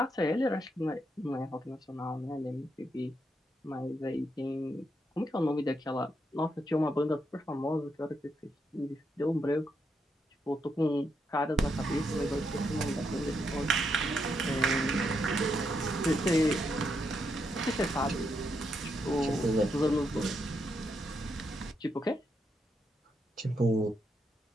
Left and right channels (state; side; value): normal; both; correlation 0.80